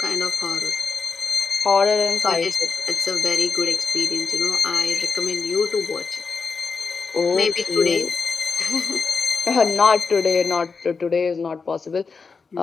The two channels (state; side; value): quieter; right; 4.9 dB